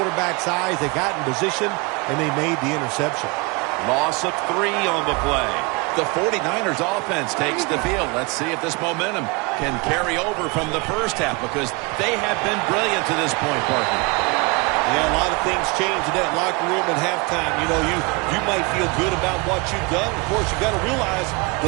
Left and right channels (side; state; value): left; quieter; 28.2 dB